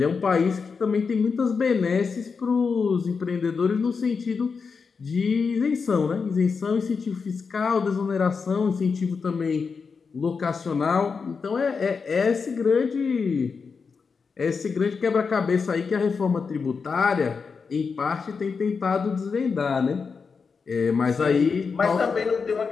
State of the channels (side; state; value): right; quieter; 5.3 dB